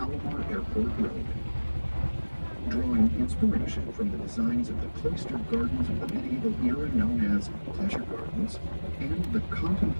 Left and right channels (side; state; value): both; inverted; correlation -1.00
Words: Airport Road. Drawing inspiration from the designs of the cloistered gardens of the medieval era known as pleasure gardens and the